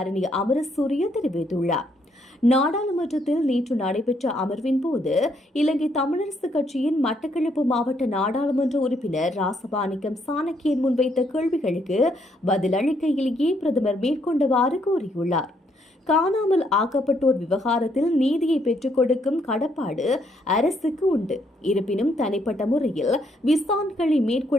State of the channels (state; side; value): normal; both; correlation 0.72